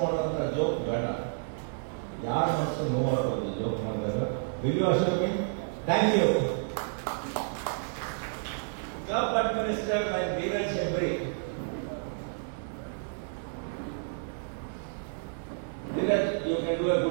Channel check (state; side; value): silent; left; digital silence